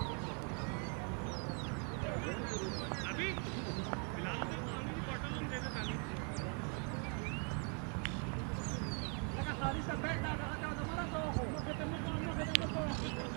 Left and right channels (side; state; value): left; quieter; 38.5 dB